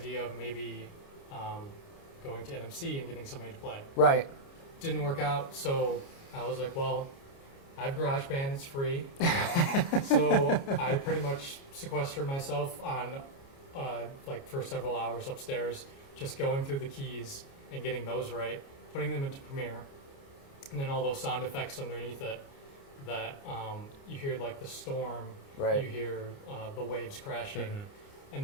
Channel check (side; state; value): right; late; 29 ms